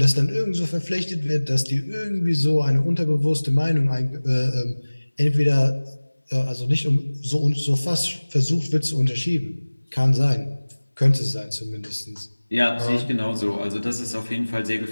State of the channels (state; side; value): inverted; both; correlation -1.00